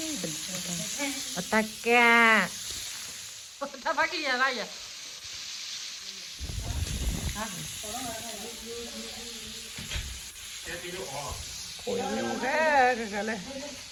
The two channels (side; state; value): both; identical; correlation 1.00